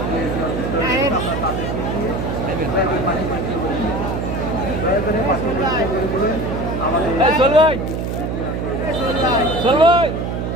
এই চল ভাই, চল ভাই।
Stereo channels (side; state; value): right; noise; hum, 3 dB below the sound